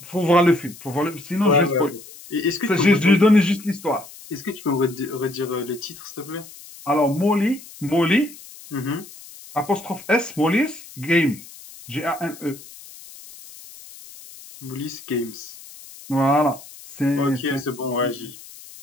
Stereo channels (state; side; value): noise; left; hiss, 18 dB below the sound